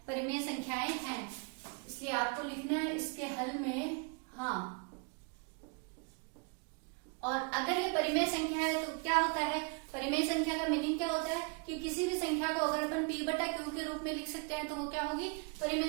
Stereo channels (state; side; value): quieter; left; 35.0 dB